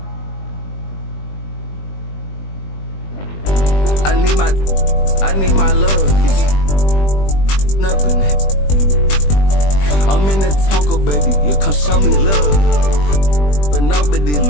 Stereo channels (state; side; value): late; right; 20 ms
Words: I need my love. Nothing. I'm in the Tonka, baby. You come show me love. But nobody